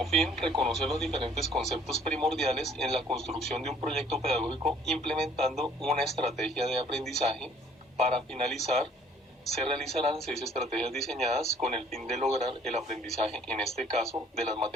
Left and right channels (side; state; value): both; normal; correlation 0.58